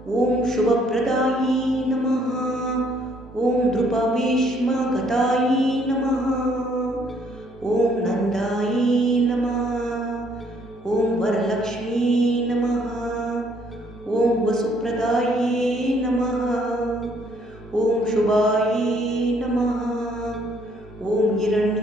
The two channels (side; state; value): both; normal; correlation 0.65